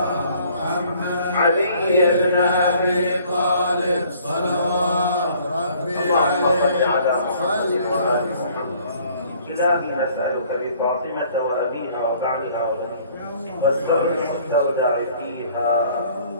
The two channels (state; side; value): inverted; both; correlation -0.57